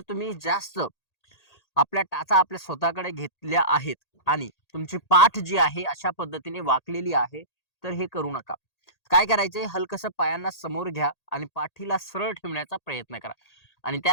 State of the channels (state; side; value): late; right; 1.8 ms